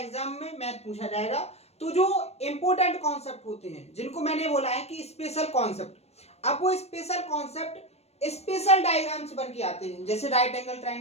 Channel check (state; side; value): late; right; 0.31 ms